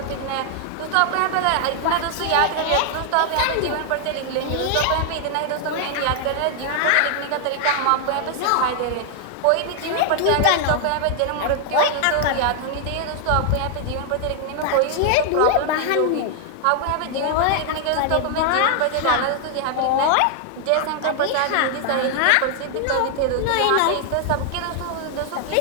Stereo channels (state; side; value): different; both; correlation 0.00